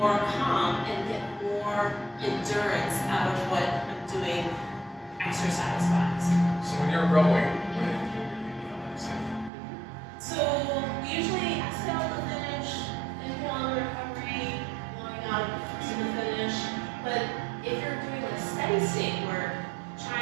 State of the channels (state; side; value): drops out; left; at 9.5 s